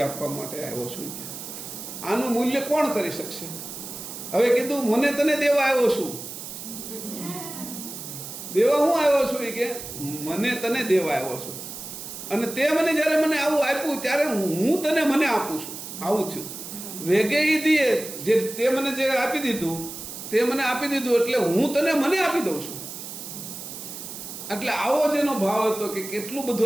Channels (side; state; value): right; noise; hiss, 10 dB below the sound